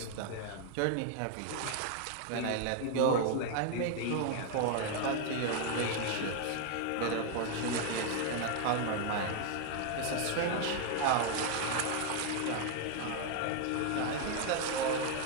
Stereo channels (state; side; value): different; both; correlation 0.00